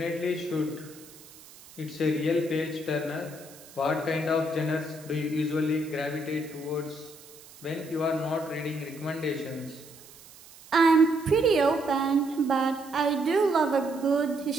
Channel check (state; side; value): noise; right; hiss, 21 dB below the sound